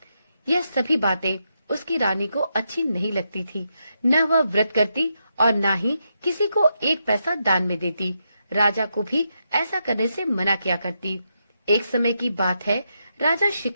यह सभी बातें उसकी रानी को अच्छी नहीं लगती थी। न वह व्रत करती और न ही किसी को एक पैसा दान में देती। राजा को भी ऐसा करने से मना किया करती। एक समय की बात है, राजा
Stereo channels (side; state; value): both; inverted; correlation -0.83